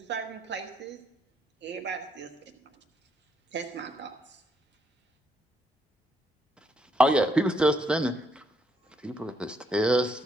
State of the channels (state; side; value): normal; both; correlation 0.73